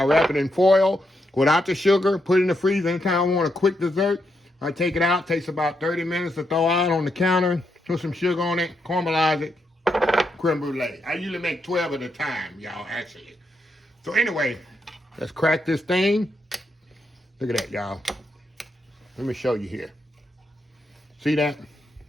wrap it in foil without the sugar, put it in the freezer. Anytime I want a quick dessert, I take it out. Takes about 30 minutes to throw out on the counter. Put some sugar on it, caramelize it, creme brulee. I usually make 12 at a time, y'all, actually. So anyway, let's crack this thing. Look at that, y'all. Let me show you here. See that?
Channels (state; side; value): normal; both; correlation 0.81